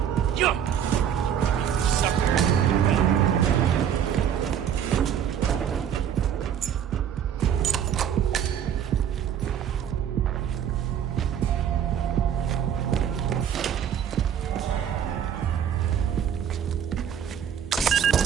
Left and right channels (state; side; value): quieter; left; 9.0 dB